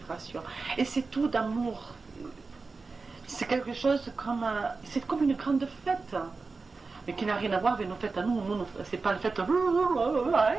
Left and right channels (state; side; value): quieter; left; 4.1 dB